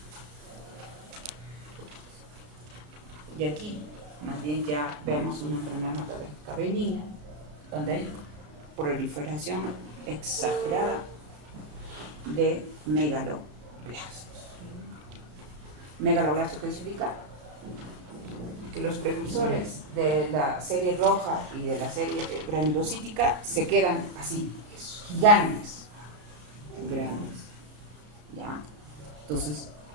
Y aquí, más bien ya vemos una enfermedad hematológica benigna, donde hay proliferación exagerada de megaloblastos. Megaloblastos, ¿qué significa? Que los precursores de la serie roja y de la serie granulocítica se quedan así, gigantes, grandes. ¿Ya? Entonces,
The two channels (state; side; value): late; left; 34 ms